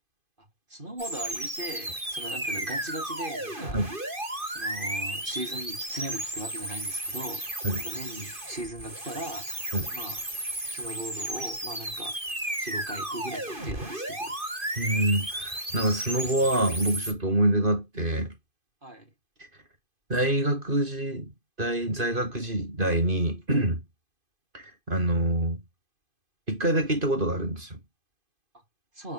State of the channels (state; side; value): late; left; 2.5 ms